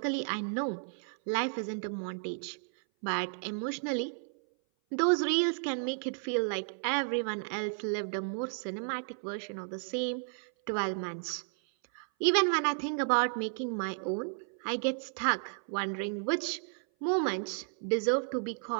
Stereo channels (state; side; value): silent; left; 56 dB below the other